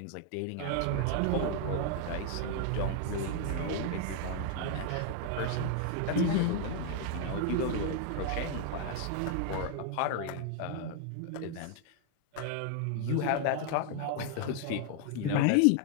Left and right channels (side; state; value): both; different; correlation 0.00